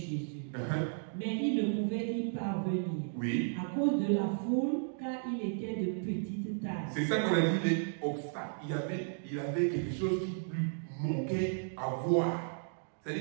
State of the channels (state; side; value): silent; left; digital silence